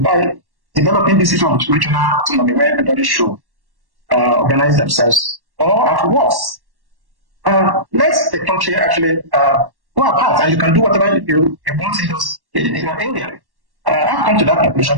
developing this sort of regional autonomy where everybody should organize themselves, or at worst, let the country actually go apart, and you can do whatever you want in your area. I've come to that conclusion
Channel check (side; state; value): left; late; 1.1 ms